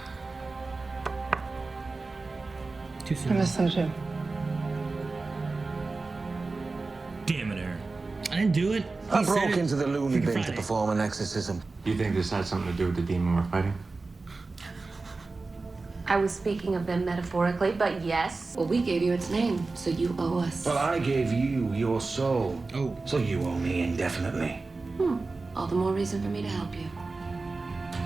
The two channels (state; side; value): quieter; left; 3.7 dB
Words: Too soon. I miss them too. Damn it, Aaron. I didn't do it. I broke into the loony bin to Friday. perform an exorcism. Do you think this had something to do with the demon we're fighting? I was speaking of them metaphorically, but yes. Well, we gave you its name, so you owe us. Well, I gave you your soul. Oh. So you owe me indefinitely. All the more reason for me to help you.